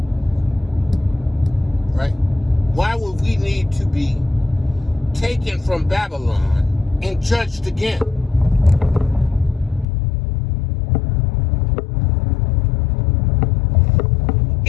right? Why would we need to be taken from Babylon and judged again.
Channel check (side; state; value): right; drops out; at 9.9 s